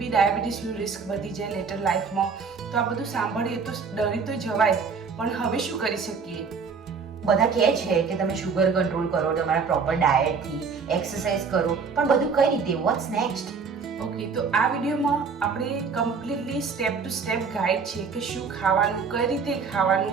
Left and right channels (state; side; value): quieter; left; 5.4 dB